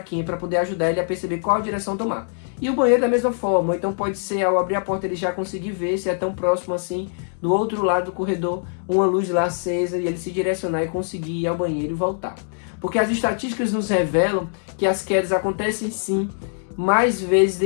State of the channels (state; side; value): silent; right; digital silence